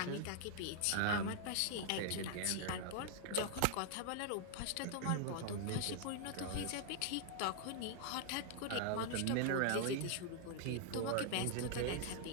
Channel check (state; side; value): different; both; correlation 0.00